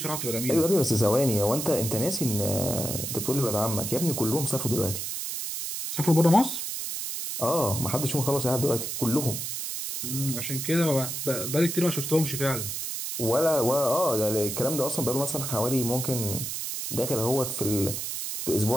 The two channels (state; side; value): noise; right; hiss, 4 dB below the sound